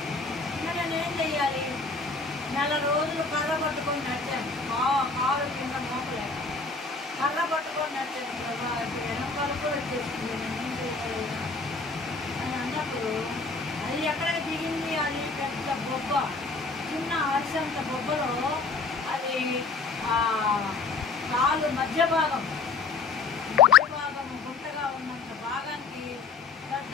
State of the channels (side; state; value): right; quieter; 4.2 dB